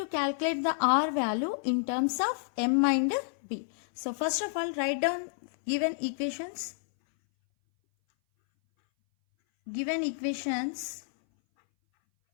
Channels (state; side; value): silent; right; 58 dB below the other